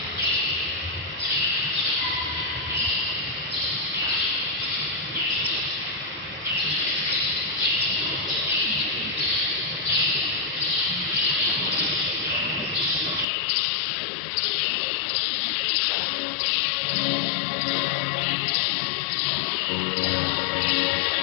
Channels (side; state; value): right; drops out; at 13.2 s